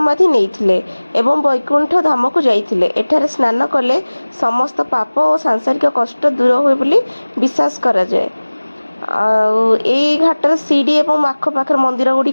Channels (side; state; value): both; inverted; correlation -1.00